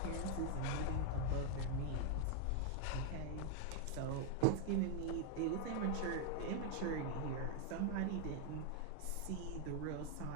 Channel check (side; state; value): both; different; correlation 0.00